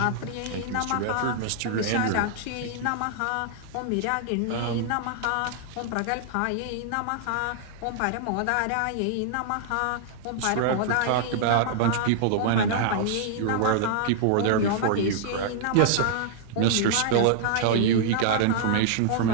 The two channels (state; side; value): different; both; correlation -0.01